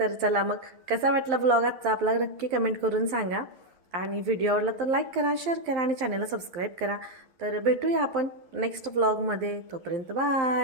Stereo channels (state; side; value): late; left; 11 ms